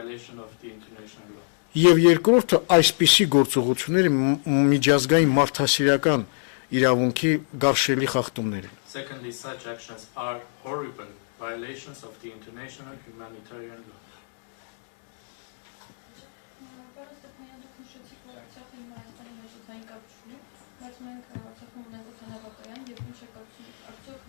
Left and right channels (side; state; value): right; silent; 61 dB below the other